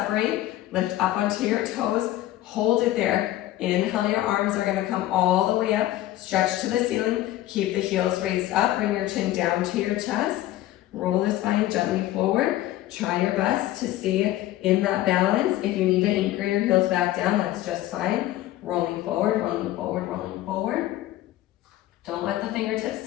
Lift up onto your toes, hold it there. Inhale, your arms are gonna come all the way up. Stretch to the ceiling, keep the heels raised up, bring your chin down to your chest. Roll the spine gently forward. Try your best to stay in that balance. If you need to anchor your heels back down, that's just fine. Rolling forward, rolling forward, rolling forward. Don't let the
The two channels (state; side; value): quieter; right; 14.8 dB